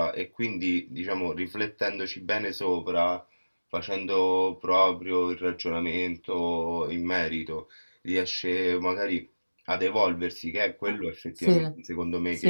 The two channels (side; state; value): both; inverted; correlation -1.00